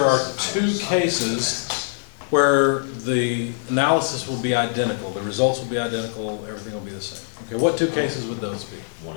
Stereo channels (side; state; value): right; silent; digital silence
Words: are 2 cases where the analysis will be identical, the results will be identical, everything will be the same? Okay, what 2 cases would those be? 1